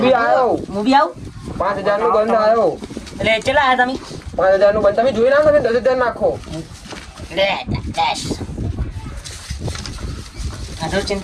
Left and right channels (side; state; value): both; identical; correlation 1.00